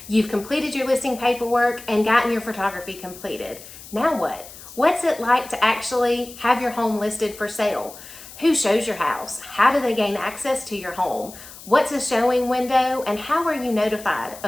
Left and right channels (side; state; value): left; noise; hiss, 17 dB below the sound